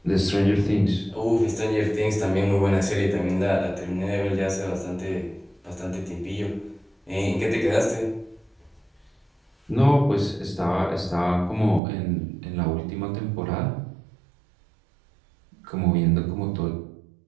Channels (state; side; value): drops out; left; at 11.8 s